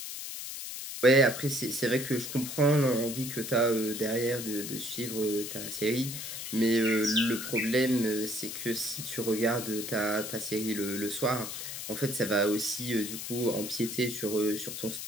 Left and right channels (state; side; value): noise; left; hiss, 7 dB below the sound